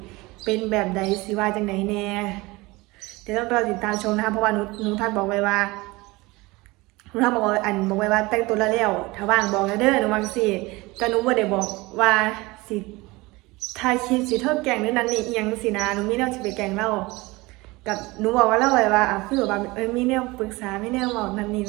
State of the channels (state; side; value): quieter; left; 22.4 dB